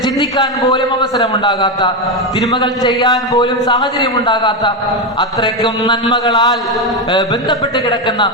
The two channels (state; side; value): normal; both; correlation 0.10